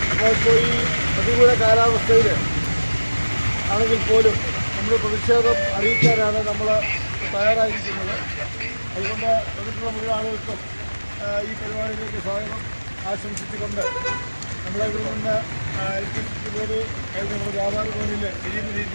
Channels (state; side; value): inverted; both; correlation -1.00